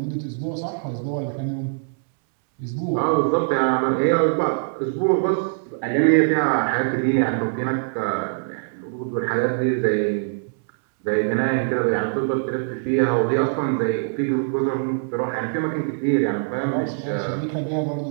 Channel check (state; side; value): silent; left; 64 dB below the other